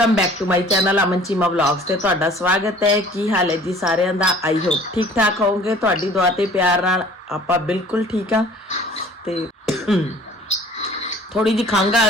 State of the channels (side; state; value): both; normal; correlation 0.50